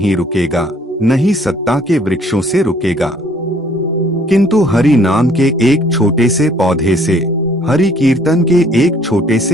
रुकेगा, नहीं सत्ता के वृक्षों से रुकेगा, किंतु हरि नाम के एक छोटे से पौधे से, हरि कीर्तन के एक छोटे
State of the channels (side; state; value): both; normal; correlation 0.60